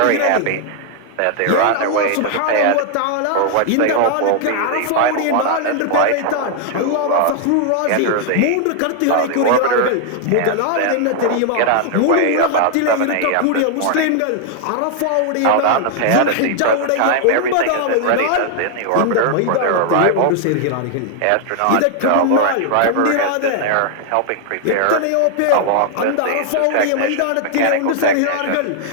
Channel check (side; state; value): both; different; correlation 0.00